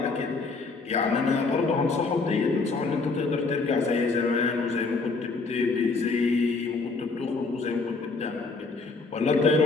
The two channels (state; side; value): quieter; right; 4.0 dB